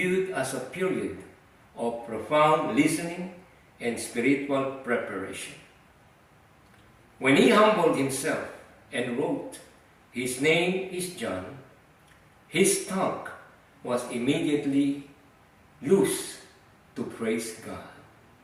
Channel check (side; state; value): both; identical; correlation 1.00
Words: as a period of profound listening and spiritual preparation. When he humbled himself and wrote, "His name is John," his tongue was immediately loose to praise God.